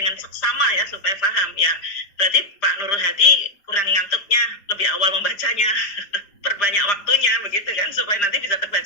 seksama ya, supaya paham ya. Berarti Pak Nurul Hadi kurang ngantuknya, lebih awal membacanya, perbanyak waktunya begitu kan, supaya nanti bisa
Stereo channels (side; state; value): right; late; 5.0 ms